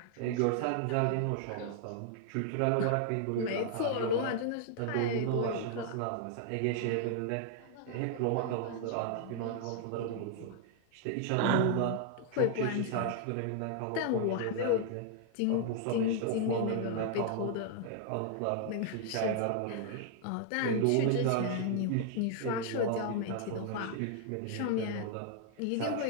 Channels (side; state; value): both; different; correlation 0.00